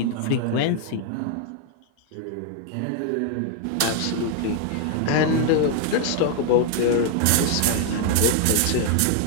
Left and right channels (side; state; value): both; different; correlation 0.00